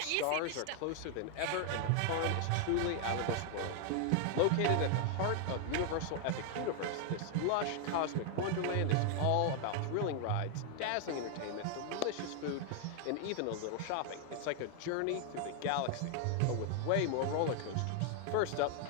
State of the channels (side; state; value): both; different; correlation 0.00